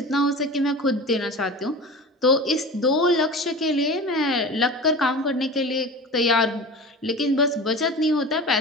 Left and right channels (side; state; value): both; normal; correlation 0.33